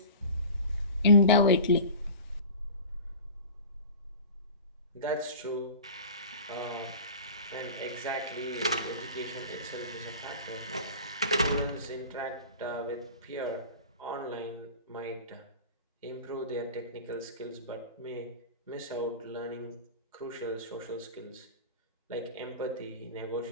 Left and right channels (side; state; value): both; inverted; correlation -0.36